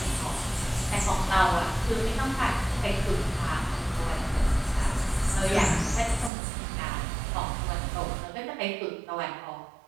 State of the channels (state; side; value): drops out; left; at 6.3 s